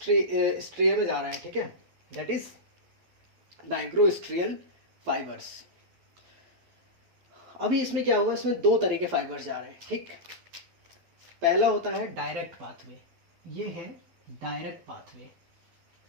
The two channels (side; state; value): left; late; 12 ms